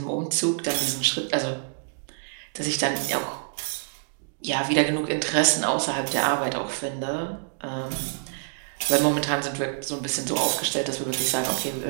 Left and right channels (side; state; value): left; silent; digital silence